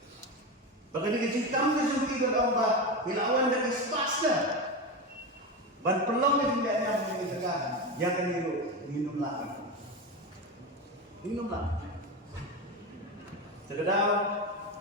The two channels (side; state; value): both; normal; correlation 0.19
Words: Pagka nagcintang na sumpi ka ba bilawan na ispas na. Ban pelong na hindi niya mo nagagahan. Ya gani ro minum lang. Minum lang. Terkadang